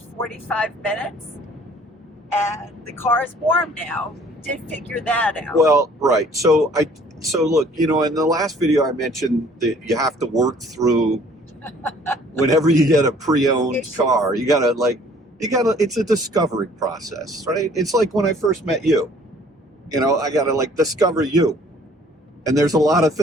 minutes, and the car is warm now. We did figure that out. Well, right. So look, in the last video I mentioned that you have to work through whenever you get a pre-owned car. You gotta it's a discovery process, right? It's like when I first met you. I gotta discover you. And there's a lot of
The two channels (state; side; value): normal; both; correlation 0.56